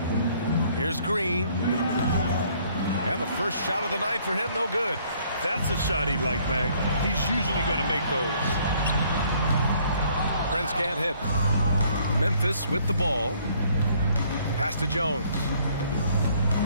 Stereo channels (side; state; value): both; inverted; correlation -0.62